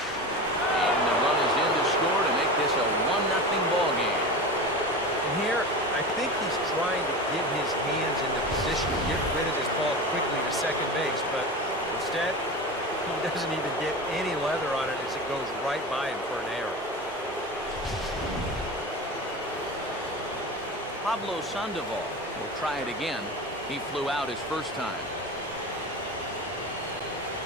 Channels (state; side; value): normal; both; correlation 0.28